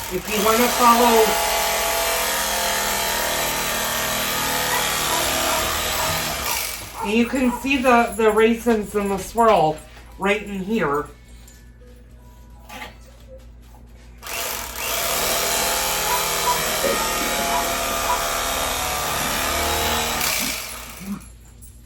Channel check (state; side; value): identical; both; correlation 1.00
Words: If you want to follow and you can see the raisins and the swirl right in here.